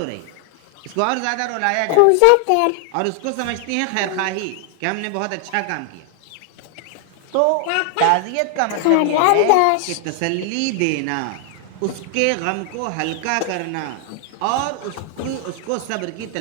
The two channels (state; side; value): different; both; correlation 0.00